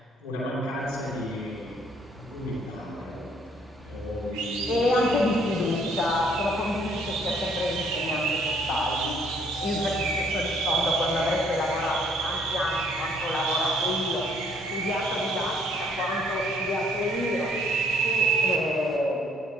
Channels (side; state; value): both; normal; correlation 0.63